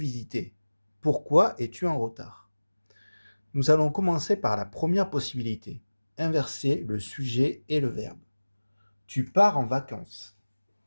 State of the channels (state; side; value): inverted; both; correlation -1.00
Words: Pourquoi es-tu en retard? Nous allons commencer par la première possibilité. Inverser le sujet et le verbe. Tu pars en vacances.